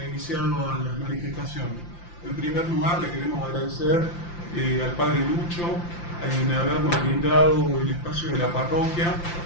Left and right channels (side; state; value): right; late; 5.8 ms